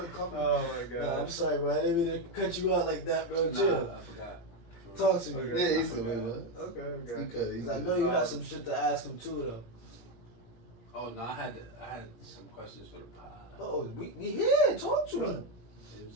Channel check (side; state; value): right; late; 17 ms